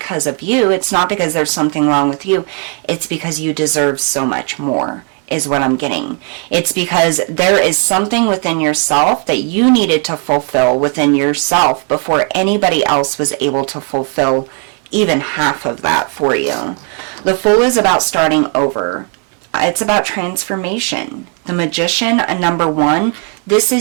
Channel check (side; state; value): left; quieter; 38.5 dB